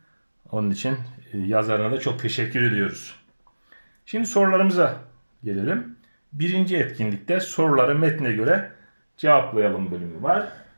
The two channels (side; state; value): both; inverted; correlation -1.00